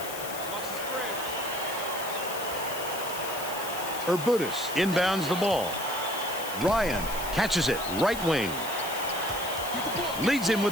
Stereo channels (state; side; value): noise; left; hiss, 9 dB below the sound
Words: Urbutis inbounds the ball. Ryan catches it, right wing. Leads him